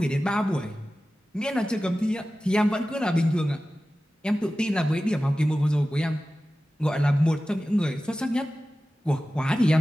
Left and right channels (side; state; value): both; normal; correlation 0.95